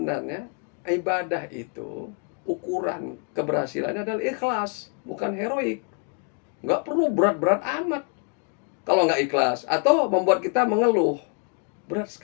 ibadah itu ukuran keberhasilannya adalah ikhlas, bukan heroik. Nggak perlu berat-berat amat kalau nggak ikhlas, atau membuat kita mengeluh. Berat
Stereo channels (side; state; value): right; quieter; 39.3 dB